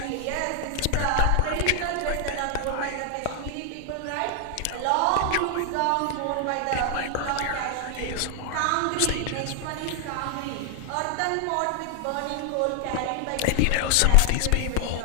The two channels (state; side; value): different; both; correlation 0.00